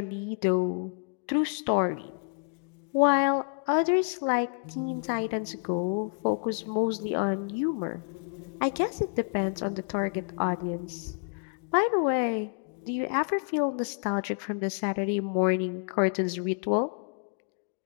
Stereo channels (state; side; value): quieter; right; 38.6 dB